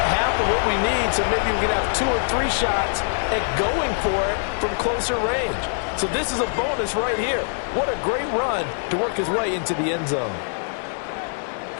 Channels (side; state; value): right; silent; 63 dB below the other